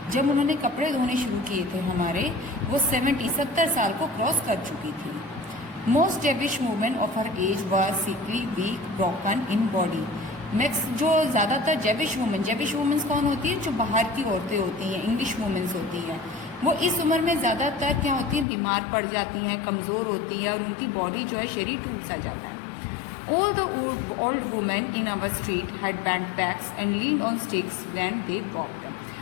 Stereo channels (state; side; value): drops out; right; at 18.4 s